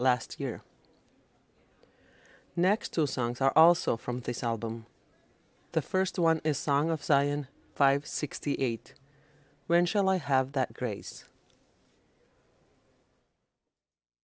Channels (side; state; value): both; identical; correlation 1.00